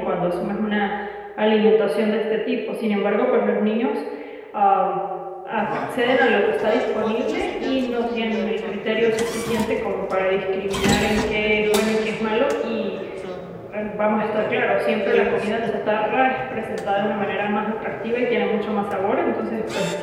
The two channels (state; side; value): identical; both; correlation 1.00